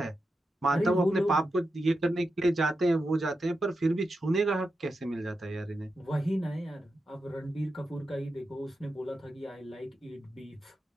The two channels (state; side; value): normal; both; correlation 0.89